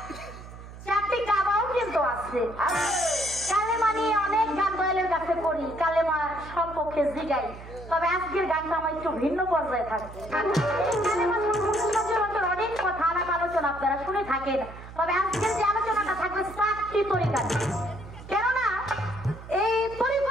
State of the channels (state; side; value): noise; right; hum, 15 dB below the sound